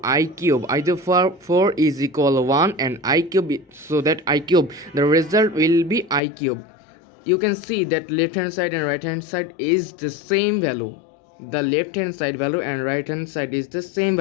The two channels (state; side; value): drops out; right; at 6.2 s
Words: I cube. Either 4 is equal 1 and I cube, so that I cube, the result will be I cube. You can see that left hand side and right hand side is the same value. The left hand side value and right hand side is the same